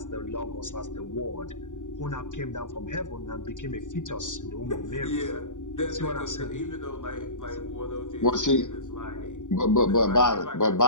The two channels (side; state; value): right; late; 0.86 ms